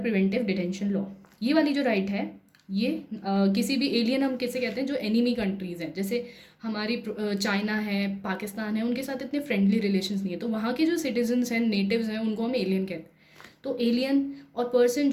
preventive detention law. ये वाली जो राइट है ये किसी भी एलियन हम किसे कहते हैं जो एनिमी कंट्रीज़ हैं, जैसे हमारी चाइना है, पाकिस्तान है, उनके साथ इतने फ्रेंडली रिलेशंस नहीं है, तो वहाँ के जो सिटीजन्स हैं, नेटिव्स हैं, उनको हम एलियन कहते हैं। तो एलियन और पर्सन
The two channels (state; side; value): identical; both; correlation 1.00